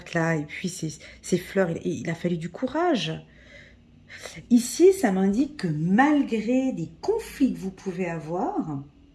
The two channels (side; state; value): both; identical; correlation 1.00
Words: là, et puis ces fleurs, il a fallu du courage. Ici, ça m'indique que malgré des conflits que vous pouvez avoir,